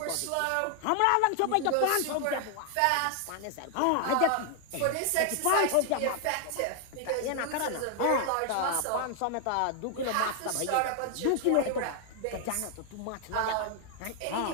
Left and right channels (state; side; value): different; both; correlation 0.00